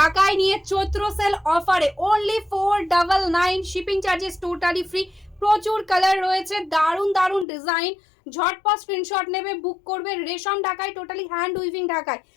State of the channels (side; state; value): right; drops out; at 7.5 s